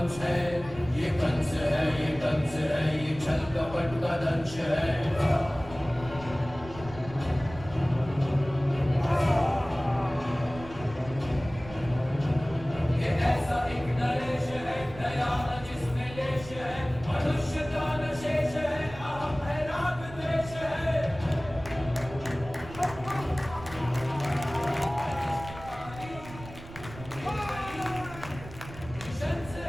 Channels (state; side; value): noise; right; rumble, 15 dB below the sound